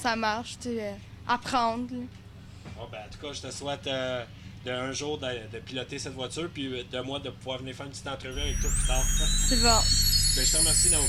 marche, tu sais, apprendre. Là. Bon, ben, en tout cas, je te souhaite un jour de piloter cette voiture, puis de moi de pouvoir venir faire une petite entrevue avec toi plus tard. C'est bon. Ben, je te remercie,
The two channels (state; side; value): identical; both; correlation 1.00